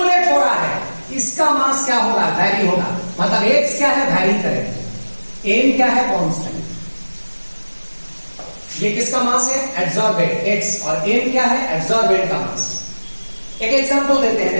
हो रहा है इसका मास क्या होगा, वैरी होगा। मतलब एक्स क्या है, वैरी करेगा, एम क्या है, कांस्टेंट। ये किसका मास है, एड्सॉर्बेंट एक्स, और एम क्या है, एड्सॉर्बेंट का मास। एक एग्जांपल देते हैं,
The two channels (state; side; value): inverted; both; correlation -1.00